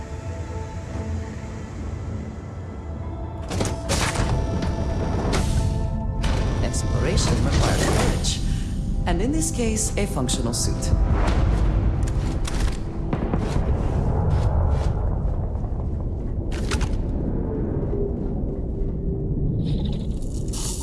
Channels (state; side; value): identical; both; correlation 1.00